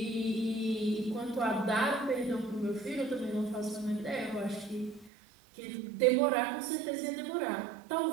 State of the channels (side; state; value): left; drops out; at 5.1 s